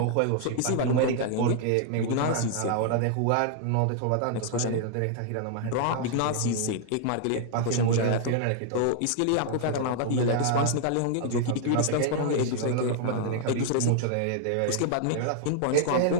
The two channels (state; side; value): different; both; correlation 0.00